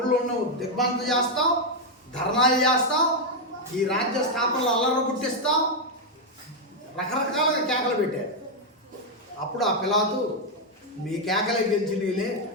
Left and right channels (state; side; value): normal; both; correlation 0.02